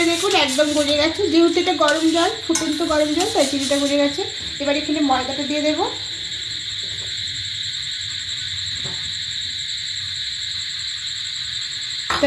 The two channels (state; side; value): identical; both; correlation 1.00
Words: দেখুন একদম গলে গেছে, যেহেতু এটা গরম জল, ফুটন্ত গরম জল, তাই চিনিটা গলে গেছে। এবার এখানে ময়দাটা দিয়ে দেবো।